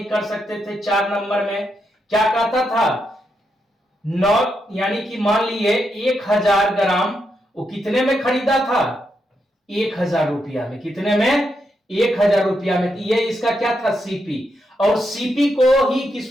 कर सकते थे। 4 नंबर में क्या कहता था? 9 यानी कि मान लिए 1000 ग्राम वो कितने में खरीदा था? 1000 रुपया में। कितने में? 1000 रुपया में। ये इसका क्या था? सीपी। और सीपी को ही किस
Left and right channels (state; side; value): normal; both; correlation 0.82